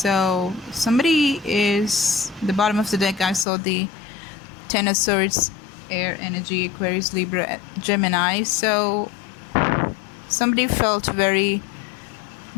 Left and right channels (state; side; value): drops out; right; at 3.5 s